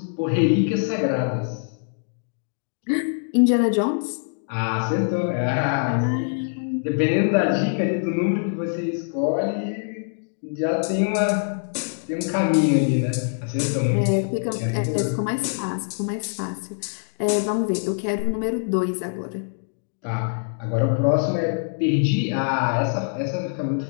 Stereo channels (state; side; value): silent; right; digital silence